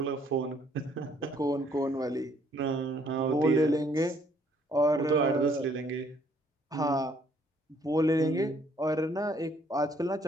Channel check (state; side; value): normal; both; correlation 0.64